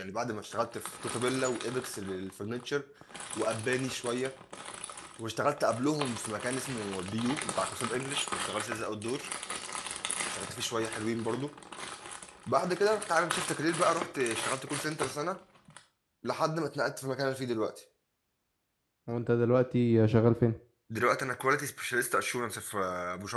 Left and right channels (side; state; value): both; identical; correlation 1.00